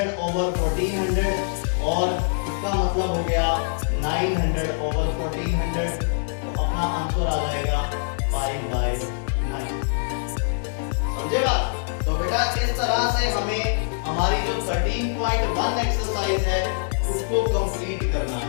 और इसका मतलब हो गया 900/1400। तो अपना आंसर आ जाएगा 5/9। समझे बात। तो बेटा इस तरह से हमें हमारी जो 13.1 एक्सरसाइज है उसको कंप्लीट करना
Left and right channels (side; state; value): right; silent; 63 dB below the other